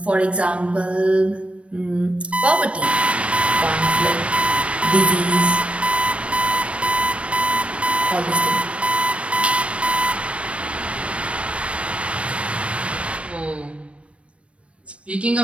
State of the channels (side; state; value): left; late; 0.061 ms